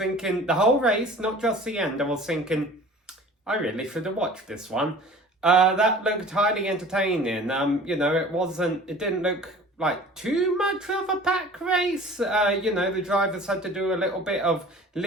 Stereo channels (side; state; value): both; normal; correlation 0.44